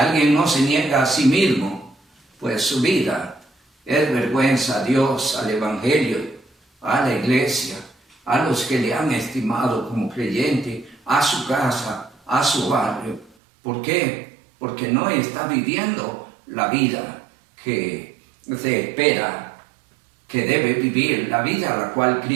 no se niega a sí mismo, pues su vida es vergüenza a Dios, al Evangelio, a la iglesia, a los que le han estimado como creyente, a su casa, a su barrio. ¿Por qué? Porque no está viviendo la vida que se espera que debe vivir, la vida a la cual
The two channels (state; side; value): drops out; left; at 13.4 s